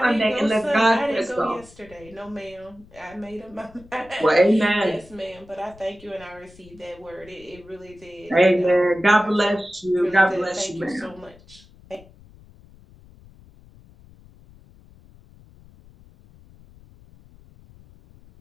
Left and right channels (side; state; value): left; noise; rumble, 24 dB below the sound